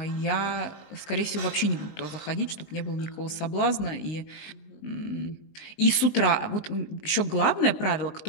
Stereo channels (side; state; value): right; late; 20 ms